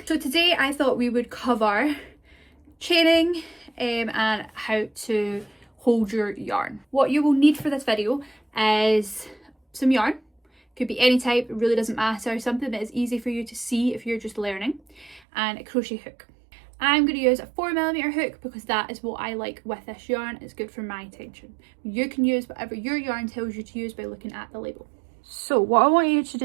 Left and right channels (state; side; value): drops out; left; at 15.2 s